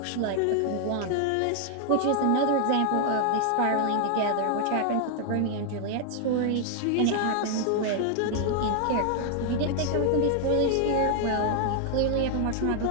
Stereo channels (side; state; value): both; different; correlation 0.00